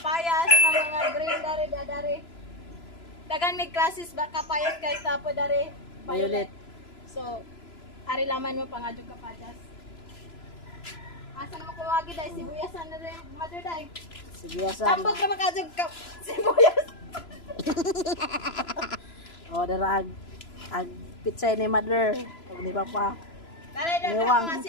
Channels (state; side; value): late; right; 3.0 ms